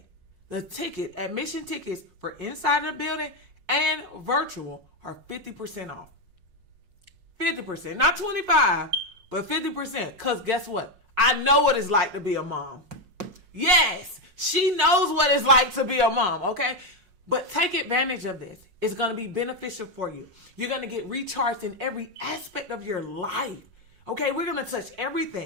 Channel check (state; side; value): late; left; 5.5 ms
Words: the admission tickets for inside of the building and virtual are 50% off. 50%, not 25, but 50%. Because guess what? I know what it's like to be a mom. Yes, she knows what it's like to be a mom, okay? But take advantage of this. It's going to be beneficial for you. You're going to get recharged in every aspect of your life. Okay, we're going to touch